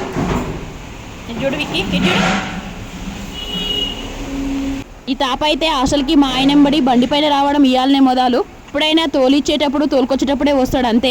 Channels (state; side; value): identical; both; correlation 1.00